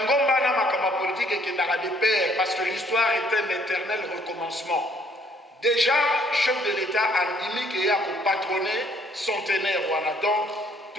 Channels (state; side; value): normal; both; correlation 0.64